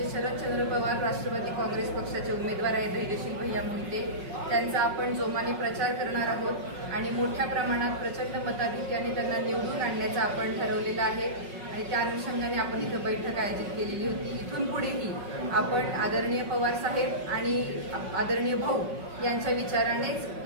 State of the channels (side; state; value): left; late; 5.4 ms